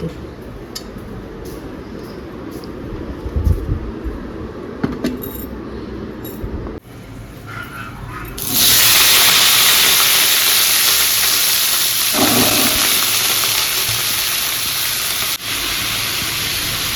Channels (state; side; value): identical; both; correlation 1.00